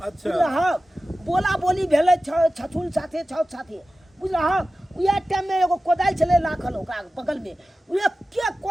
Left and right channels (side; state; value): both; normal; correlation 0.95